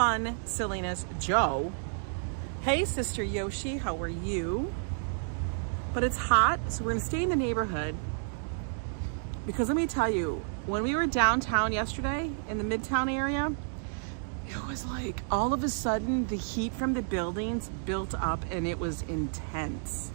silliness. Joe. Hey, Sister Yoshi, how are you? But it's hot, so we're gonna stay in the neighborhood. Because let me tell you, when we were downtown yesterday in the Midtown area, it was like all of a sudden the heat from the buildings built up and it was intense.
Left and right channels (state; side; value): silent; left; digital silence